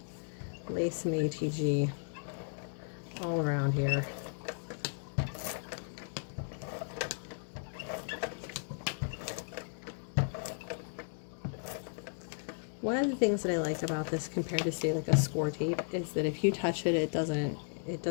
lay some ATG all around here. One of the things that I like about this compared to, say, like a score tape is that if you touch it, it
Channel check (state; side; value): silent; right; digital silence